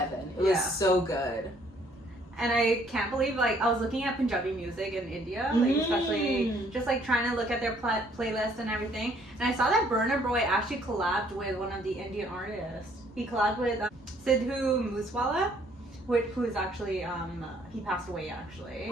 It was so good. And I can't believe, like, I was looking at Punjabi music in India, like, especially just, like, trying to look at their playlist and everything. And I saw that Burna Boy actually collabed with one of the Indian artists. He collabed with Sidhu Moosewala, who's actually, he passed away, actually,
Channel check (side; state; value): both; normal; correlation 0.63